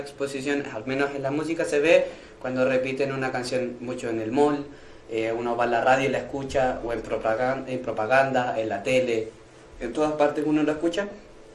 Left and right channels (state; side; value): identical; both; correlation 1.00